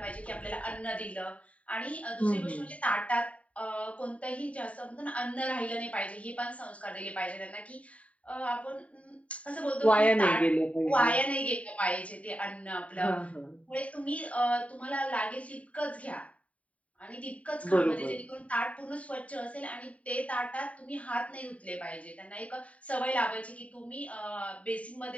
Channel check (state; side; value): late; right; 0.066 ms